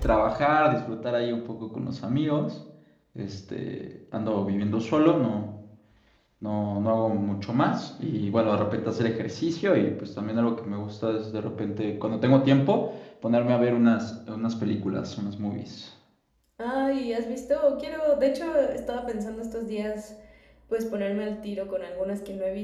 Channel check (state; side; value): identical; both; correlation 1.00